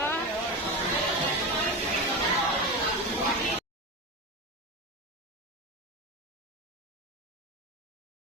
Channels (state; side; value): normal; both; correlation 0.21